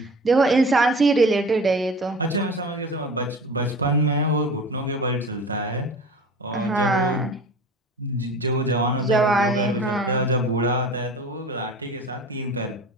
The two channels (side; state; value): both; normal; correlation 0.38